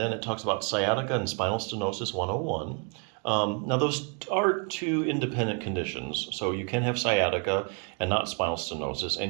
it talks about sciatica and spinal stenosis 101. Now, those are two independent conditions. So you can have sciatica and not spinal stenosis,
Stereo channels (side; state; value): left; quieter; 36.3 dB